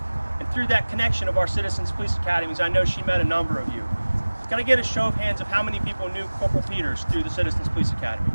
And through that connection of our citizens police academies, I know she met a number of you. Can I get a show of hands of how many people knew Corporal Peters through the Citizens Police Academy?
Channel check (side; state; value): both; inverted; correlation -1.00